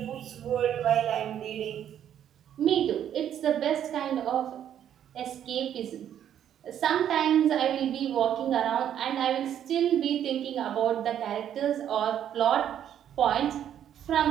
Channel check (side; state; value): left; quieter; 10.0 dB